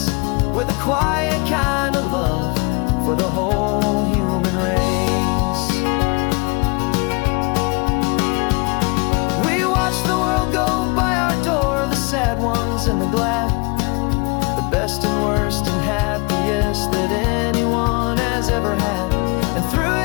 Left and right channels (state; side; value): quieter; right; 29.9 dB